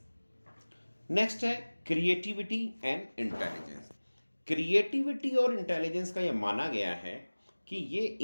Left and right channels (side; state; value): both; inverted; correlation -1.00